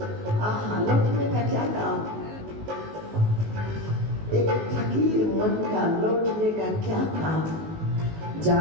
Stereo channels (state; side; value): late; left; 19 ms